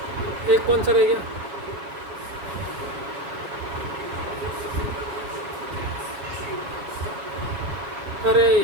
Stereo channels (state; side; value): late; left; 7.4 ms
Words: एक कौन सा रह गया? अरे